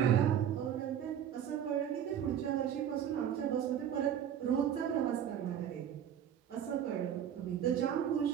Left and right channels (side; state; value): left; quieter; 9.5 dB